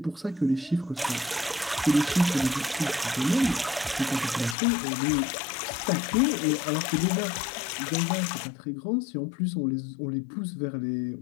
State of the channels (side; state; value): right; drops out; at 4.5 s